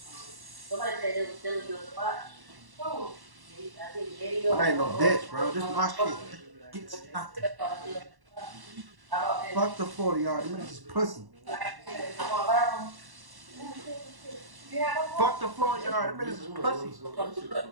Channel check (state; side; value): late; left; 1.1 ms